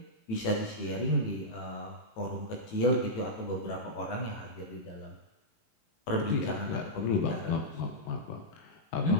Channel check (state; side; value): late; right; 18 ms